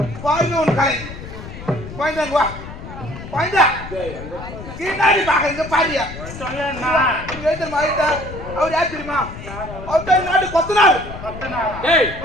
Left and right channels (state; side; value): noise; left; rumble, 12 dB below the sound